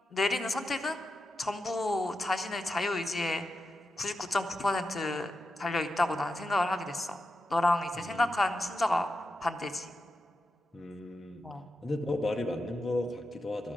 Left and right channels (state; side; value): normal; both; correlation 0.88